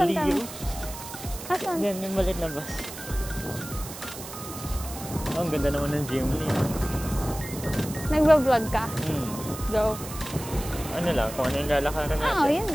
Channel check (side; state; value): right; noise; hiss, 12 dB below the sound